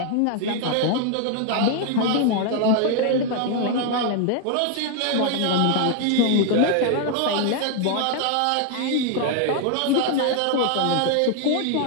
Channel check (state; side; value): different; both; correlation 0.00